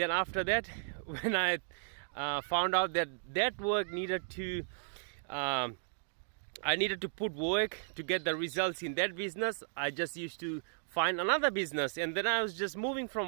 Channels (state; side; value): silent; left; digital silence